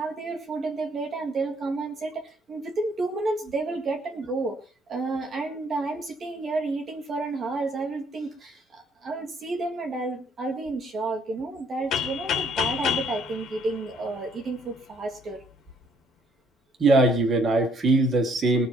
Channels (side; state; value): both; normal; correlation 0.65